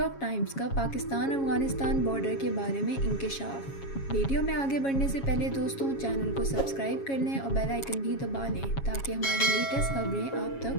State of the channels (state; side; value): late; right; 7.3 ms